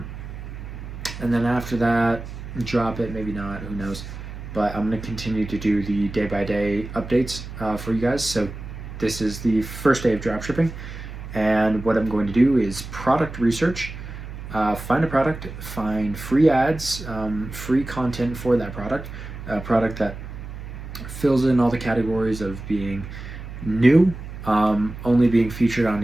then after that, drop it, maybe not, who knows. But I'm going to continue to do the day-by-day updates for you guys. So this is the first day of dropshipping. And what I'm going to do is product research, find a product, find free ads, free content for that product, a product that fills in all the categories of being new, only being featured on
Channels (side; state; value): right; noise; hum, 11 dB below the sound